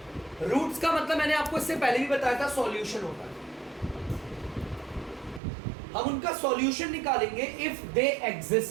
रूट्स का मतलब मैंने आपको इससे पहले भी बताया था, सॉल्यूशन होता है। हम उनका सॉल्यूशन निकालेंगे इफ दे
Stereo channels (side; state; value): left; drops out; at 5.4 s